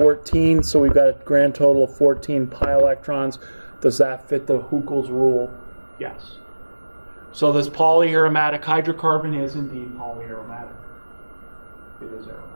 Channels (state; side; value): inverted; both; correlation -1.00